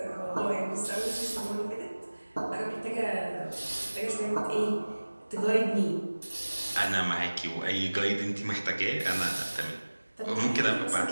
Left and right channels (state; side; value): inverted; both; correlation -1.00